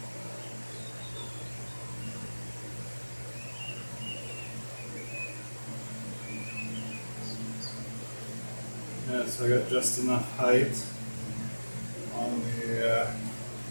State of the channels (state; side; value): inverted; both; correlation -1.00